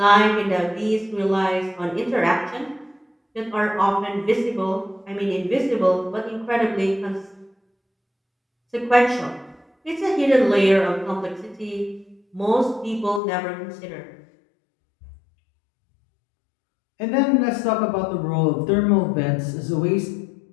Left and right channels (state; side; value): drops out; right; at 13.2 s